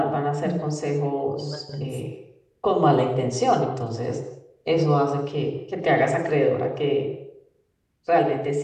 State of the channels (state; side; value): identical; both; correlation 1.00